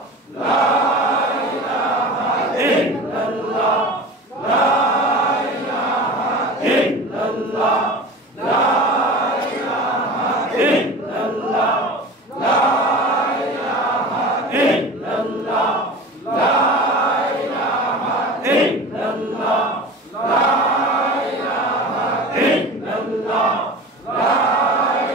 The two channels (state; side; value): normal; both; correlation 0.34